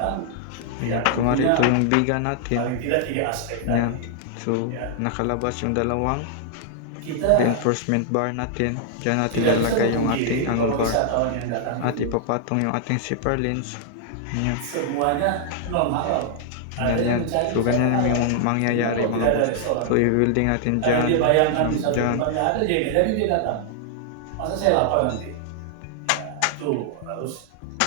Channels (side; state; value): both; different; correlation 0.00